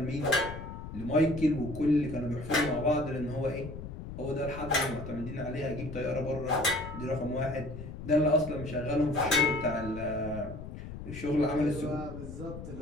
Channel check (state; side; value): noise; left; rumble, 10 dB below the sound